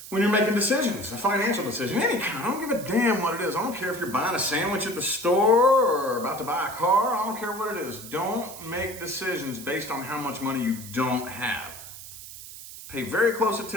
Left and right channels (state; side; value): noise; right; hiss, 14 dB below the sound